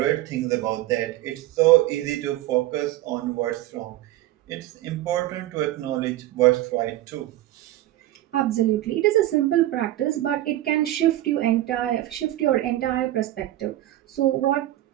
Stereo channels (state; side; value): quieter; left; 15.1 dB